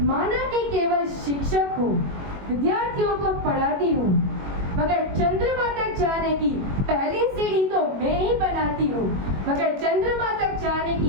माना कि केवल शिक्षक हूँ, विद्यार्थियों को पढ़ाती हूँ, मगर चंद्रमा तक जाने की पहली सीढ़ी तो मैं ही बनाती हूँ। मगर चंद्रमा तक जाने की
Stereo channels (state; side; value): late; left; 21 ms